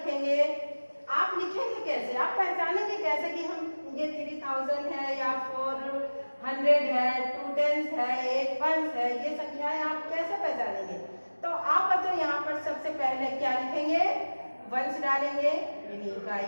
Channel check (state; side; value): inverted; both; correlation -1.00